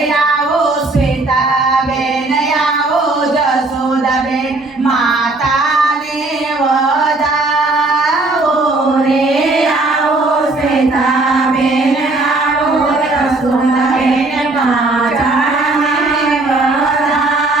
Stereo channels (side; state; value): left; quieter; 3.1 dB